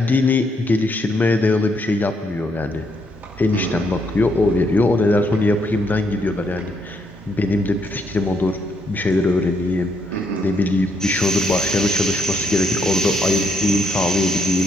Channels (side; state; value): both; normal; correlation 0.74